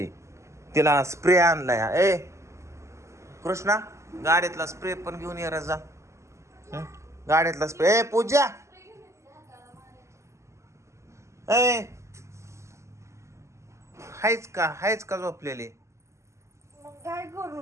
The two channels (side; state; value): left; late; 0.14 ms